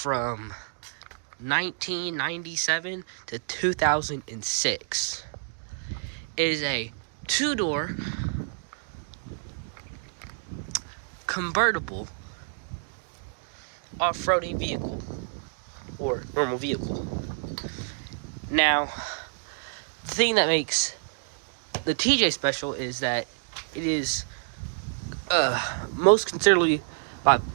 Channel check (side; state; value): left; silent; digital silence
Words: 1997 to 2006. It is a two-door convertible off-roading vehicle or normal vehicle. Now, the thing that makes the TJ special is that it is most considerably